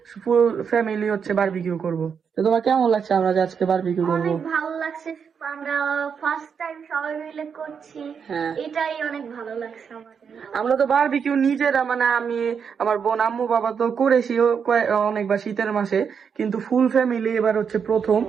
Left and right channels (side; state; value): left; quieter; 6.7 dB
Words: ফুল ফ্যামিলি হচ্ছে বারবিকিউ করব। তো তোমার কেমন লাগছে আমরা যে আজকে বারবিকিউ করব? অনেক ভালো লাগছে, আমরা ফার্স্ট টাইম সবাই মিলে করছি। হ্যাঁ, এটাই অনেক ভালো লাগছে আমাদের। আমরা তো বারবিকিউ নিজেরা, মানে আমি, আমার বোন, আম্মু, বাবা তো করেছি অনেকবার শীতের মাসে, কিন্তু ফুল ফ্যামিলি এবার হচ্ছে প্রথম।